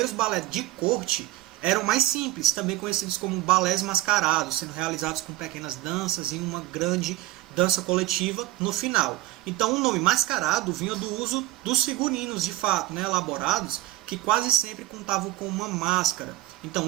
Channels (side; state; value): left; quieter; 17.2 dB